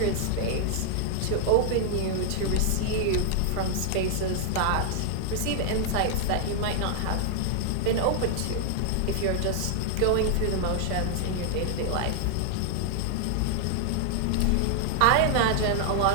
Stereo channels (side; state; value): both; different; correlation 0.00